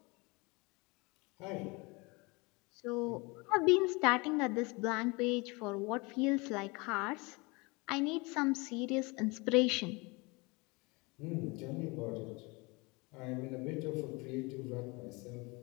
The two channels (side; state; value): right; quieter; 26.7 dB